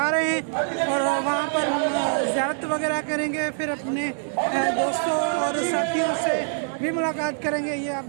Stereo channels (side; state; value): left; silent; digital silence